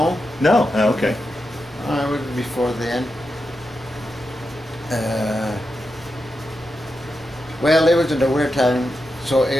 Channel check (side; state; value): both; normal; correlation 0.88